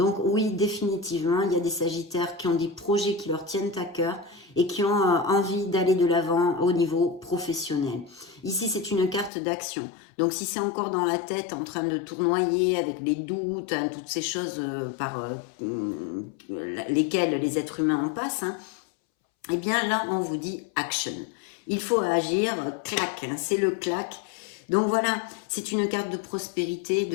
oui, définitivement, il y a des Sagittaires qui ont des projets qui leur tiennent à cœur et qui ont envie d'aller de l'avant au niveau professionnel. Ici, c'est une carte d'action. Donc si c'est encore dans la tête, en train de tournoyer avec les doutes, toutes ces choses par lesquelles les êtres humains en passent, eh bien là, on vous dit action. Il faut agir, clac, c'est le clac. Donc voilà, c'est une carte de prospérité,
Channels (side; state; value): right; drops out; at 9.3 s